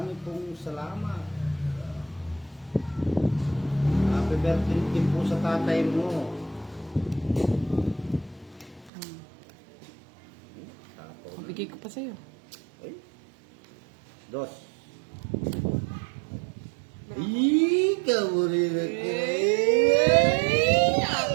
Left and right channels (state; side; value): drops out; left; at 8.9 s